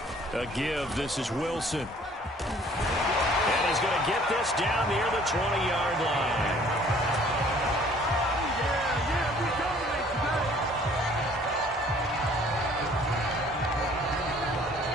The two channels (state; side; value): normal; both; correlation 0.56